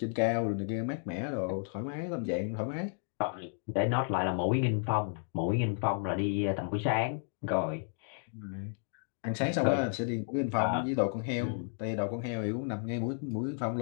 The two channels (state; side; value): silent; right; 56 dB below the other